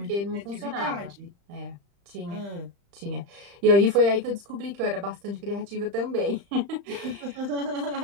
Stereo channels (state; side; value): late; left; 35 ms